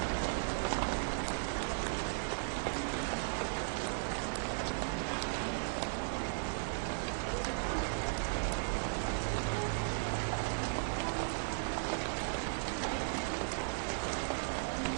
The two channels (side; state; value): left; silent; digital silence